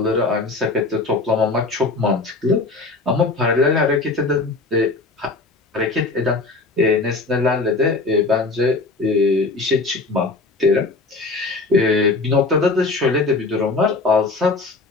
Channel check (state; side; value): quieter; right; 3.6 dB